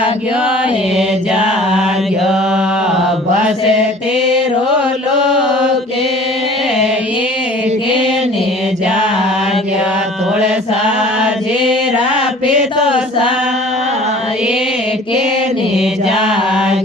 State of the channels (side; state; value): both; normal; correlation 0.47